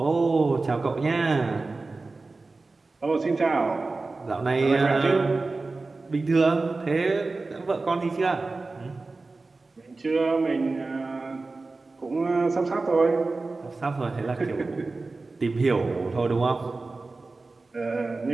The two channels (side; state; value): left; quieter; 3.6 dB